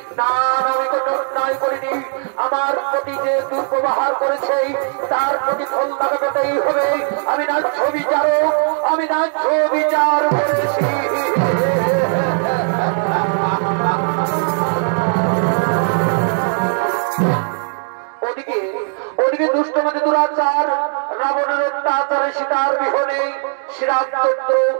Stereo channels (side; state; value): left; silent; 62 dB below the other